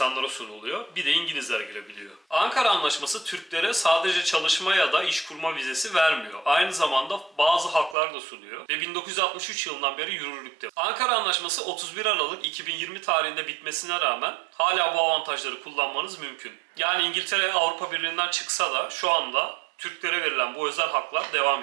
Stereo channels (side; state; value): left; drops out; at 8.0 s